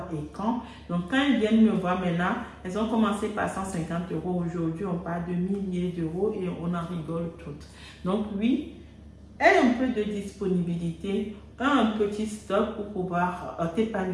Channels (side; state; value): both; identical; correlation 1.00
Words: et quand. Donc, quand elles viennent me voir maintenant, elles ont commencé par 150 €. Aujourd'hui, on parle de milliers d'euros et on en rigole toutes. Donc, oui, aie un peu de disponibilité, un petit stock pour pouvoir